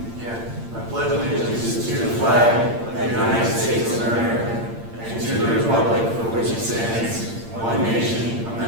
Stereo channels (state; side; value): late; left; 8.8 ms